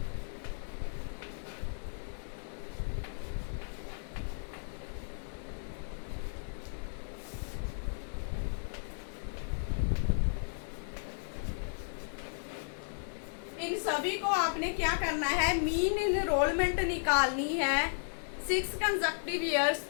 इन सभी को आपने क्या करना है, मीन इनरोलमेंट निकालनी है 6 कंसेक्टिव ईयर्स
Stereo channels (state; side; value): silent; right; 55 dB below the other